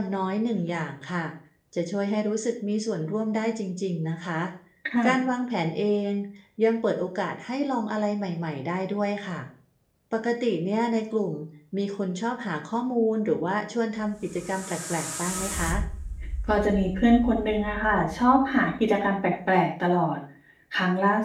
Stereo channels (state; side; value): identical; both; correlation 1.00